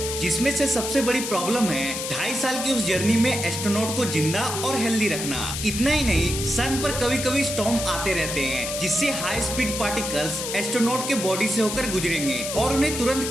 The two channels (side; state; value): left; noise; hiss, 5 dB below the sound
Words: जिसमें से सबसे बड़ी प्रॉब्लम है 2.5 साल की उस जर्नी में एस्ट्रोनॉट को जिंदा और हेल्दी रखना। इतना ही नहीं, सन पर कभी कभी स्टॉर्म आते रहते हैं जिससे हाई स्पीड पार्टिकल्स एस्ट्रोनॉट के बॉडी से होकर गुजरेंगे और उन्हें तुरंत